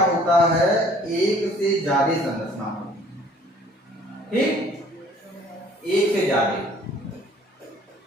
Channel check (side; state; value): both; normal; correlation 0.55